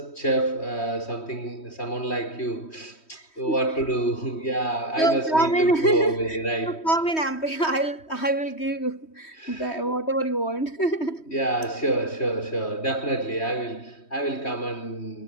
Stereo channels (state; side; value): late; right; 3.1 ms